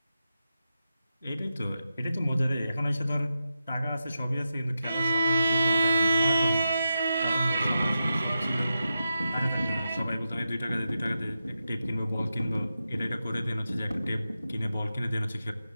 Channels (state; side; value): inverted; both; correlation -0.89